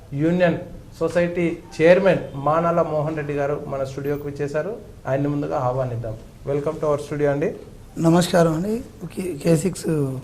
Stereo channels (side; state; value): both; identical; correlation 1.00